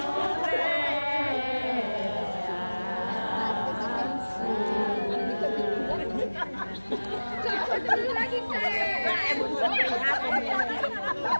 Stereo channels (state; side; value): inverted; both; correlation -1.00